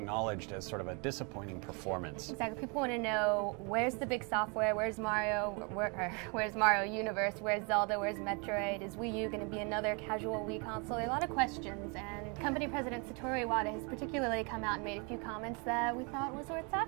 as sort of a disappointing performance. Exactly. People want to know, where's the big software? Where's Mario? Where's Mario Universe? Where's Zelda? Where's Metroid? Is Wii U going to be another casual Wii console? There are a lot of questions, and company president Satoru Iwata has particularly come out and made a few comments that we thought was worth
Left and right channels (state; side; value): quieter; left; 33.5 dB